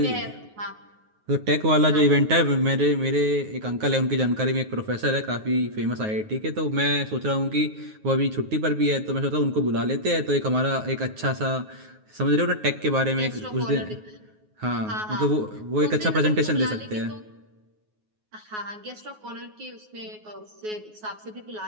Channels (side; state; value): left; late; 9.4 ms